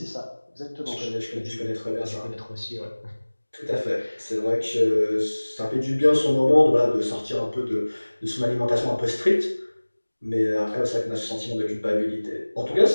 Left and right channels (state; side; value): inverted; both; correlation -1.00